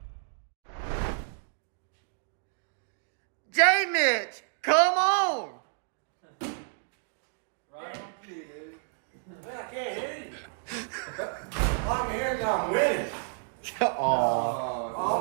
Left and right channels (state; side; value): silent; left; digital silence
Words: J Mitch, come on. Right on cue, dude. I can't hear you. I'm here, I'm winning.